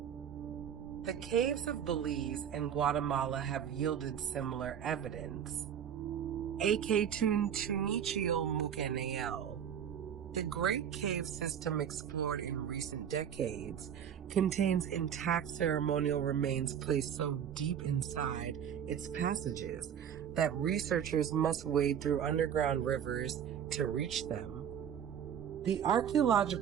The caves of Belize and Guatemala have yielded similar evidence. The Great Cave System explored in recent decades contains intact ceremonial remains placed so deep inside its passages that researchers must wade through underground rivers to reach them. The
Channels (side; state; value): left; quieter; 8.8 dB